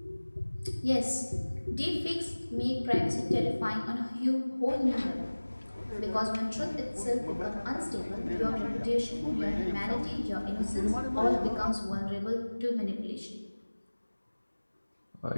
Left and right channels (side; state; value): both; inverted; correlation -1.00